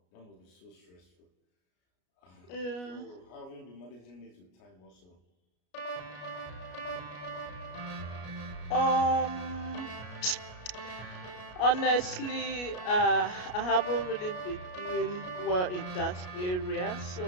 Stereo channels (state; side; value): late; right; 33 ms